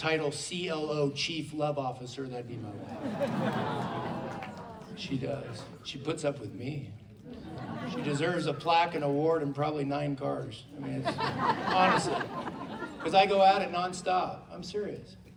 CLO, Chief Love Officer, that'd be my wife. She does. She puts up with me. She deserves a plaque, an award, and probably 9 cars. I mean, it's, honestly. Because I go at it nonstop. I'm serious.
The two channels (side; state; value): both; identical; correlation 1.00